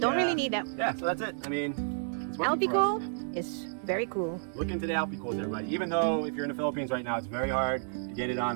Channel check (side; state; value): left; silent; digital silence